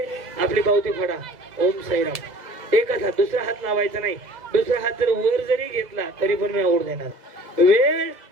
आपली पावती फाडा. ओम साईराम. एकच हात, दुसरा हात लावायचा नाही. दुसरा हात जर वर जरी घेतला तरी पण मी आवड देणार. वेळ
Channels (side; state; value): left; late; 2.0 ms